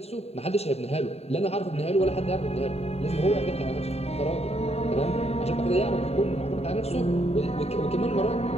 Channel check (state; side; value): late; right; 0.30 ms